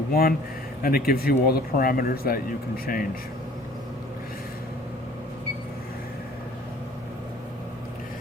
and it gives you all the parameters that you can change.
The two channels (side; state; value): both; normal; correlation 0.52